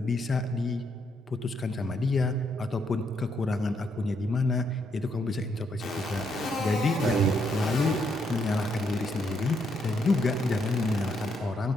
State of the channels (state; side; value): normal; both; correlation 0.75